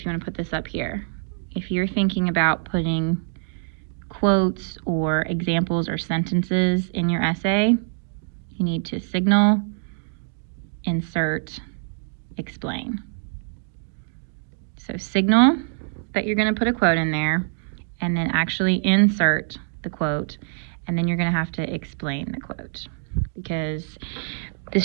you want to put this up here, if you're thinking about putting quotes or examples or sentences in your essay, you need to signal, insert, explain. So signal that you're going to put a quote in there, and then actually insert the quote, and then you're going to have to explain the quote. Because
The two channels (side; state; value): left; silent; digital silence